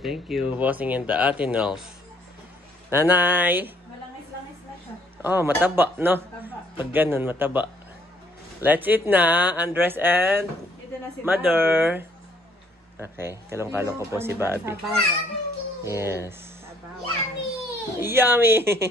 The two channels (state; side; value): normal; both; correlation 0.64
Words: thank you. Bossing in the Atinals. Nanay! Malangis-langis na siya. Oh, mataba, no? Taba. Pag ganun, mataba. Let's eat na, Andres and Ito na si Mother. Okay, kalong-kalong ko po si Bobby. Sabawan. Yes. Sabawan. Yummy!